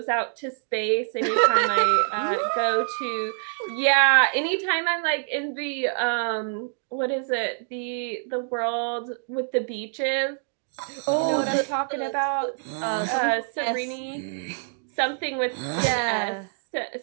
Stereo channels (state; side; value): silent; left; 57 dB below the other